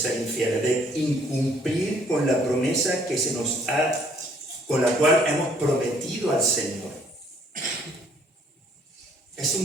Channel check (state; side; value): normal; both; correlation 0.63